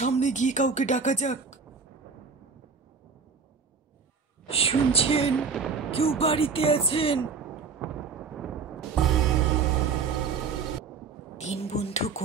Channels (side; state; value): left; quieter; 5.3 dB